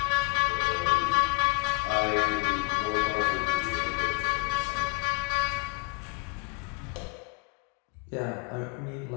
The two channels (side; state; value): right; quieter; 36.1 dB